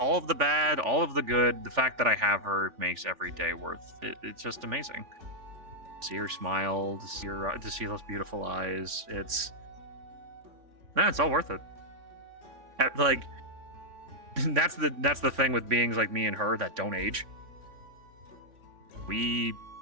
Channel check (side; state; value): left; late; 3.6 ms